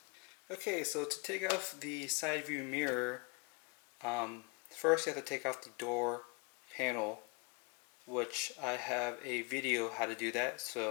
Okay, so to take off the side view mirror, first you have to take off the door panel, which I have a video how to do that,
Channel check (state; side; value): quieter; right; 30.6 dB